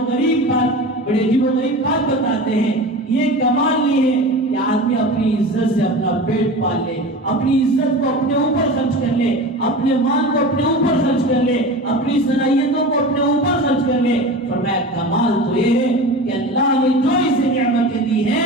غریب بات بتاتے ہیں۔ یہ کمال نہیں ہے کہ آدمی اپنی عزت سے اپنا پیٹ پال لے، اپنی عزت کو اپنے اوپر خرچ کر لے، اپنے مال کو اپنے اوپر خرچ کر لے، اپنی صلاحیتوں کو اپنے اوپر خرچ کر لے۔ فرمایا کمال تو یہ ہے کہ اللہ نے جو اسے نعمتیں دی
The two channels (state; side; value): normal; both; correlation 0.32